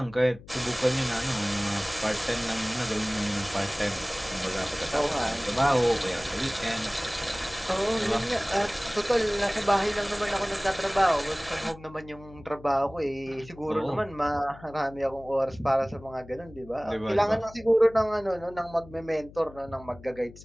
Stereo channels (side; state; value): left; noise; hum, 19 dB below the sound